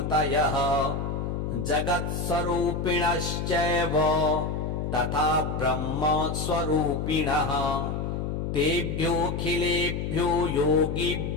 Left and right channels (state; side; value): noise; left; hum, 3 dB below the sound